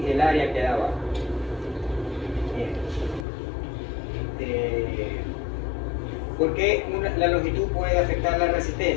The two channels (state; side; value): drops out; right; at 3.2 s